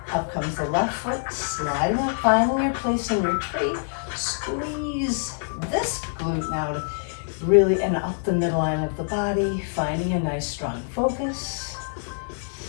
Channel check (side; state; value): right; silent; digital silence